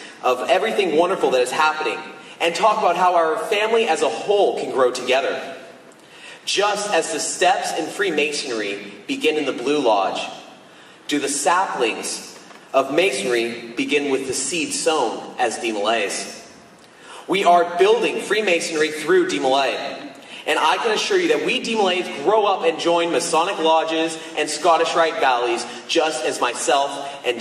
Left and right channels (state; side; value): identical; both; correlation 1.00